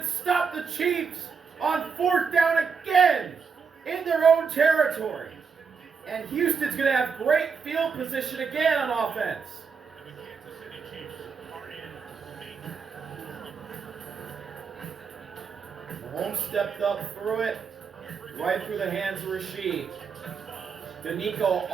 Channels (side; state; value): left; quieter; 5.8 dB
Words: stop the Chiefs on 4th down again in their own territory. And Houston's going to have great field position again on offense. Mahomes stepped up, threw it right through the hands of Rasheed. Danico